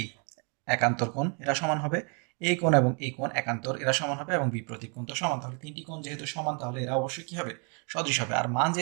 একান্তর কোণ, এরা সমান হবে। এই কোণ এবং এই কোণ একান্তর, এরা সমান হবে এবং বিপরীত কোণ তো সমান। তাহলে তিনটি কোণ যেহেতু সমান তাহলে এরা অবশ্যই কি হবে, সদৃশ হবে। আর মান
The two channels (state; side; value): quieter; left; 35.9 dB